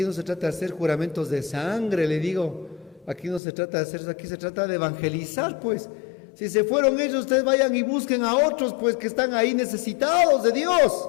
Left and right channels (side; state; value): right; drops out; at 3.4 s